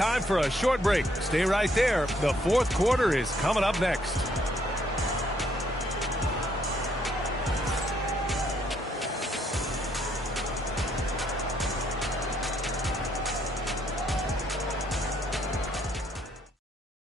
for a short break. Stay right there. The 4th quarter is coming up next.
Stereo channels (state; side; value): normal; both; correlation 0.70